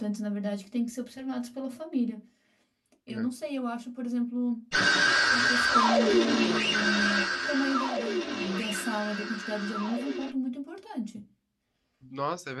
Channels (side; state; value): both; identical; correlation 1.00